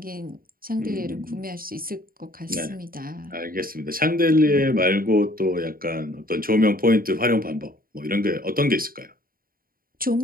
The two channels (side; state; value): left; late; 0.42 ms